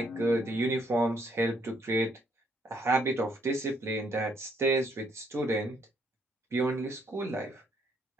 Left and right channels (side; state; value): both; normal; correlation 0.70